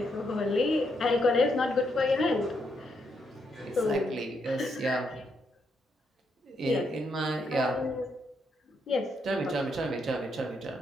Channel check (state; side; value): normal; both; correlation 0.78